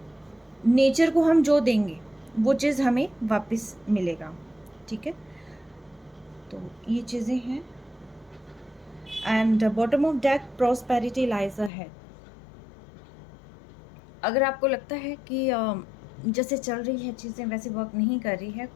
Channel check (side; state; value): right; drops out; at 11.7 s